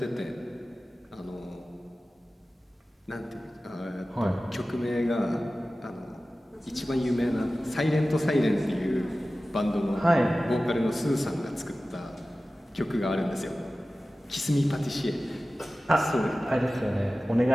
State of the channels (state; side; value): normal; both; correlation 0.96